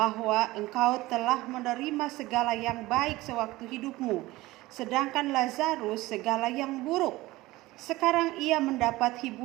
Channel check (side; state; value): left; quieter; 18.8 dB